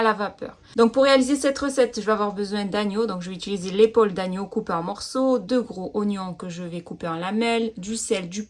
la vapeur. Donc pour réaliser cette recette, je vais avoir besoin d'agneau. Donc je vais utiliser l'épaule d'agneau coupée en morceaux, 2 gros oignons que je vais couper en lamelles, du sel, du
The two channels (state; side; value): identical; both; correlation 1.00